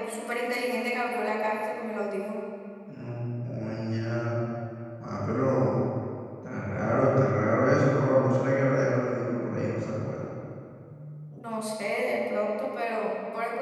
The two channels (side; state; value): both; identical; correlation 1.00